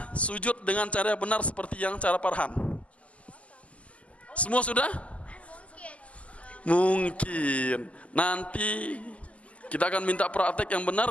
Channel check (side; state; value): right; late; 0.065 ms